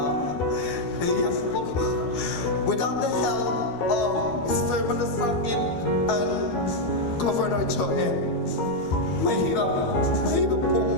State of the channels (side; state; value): right; late; 12 ms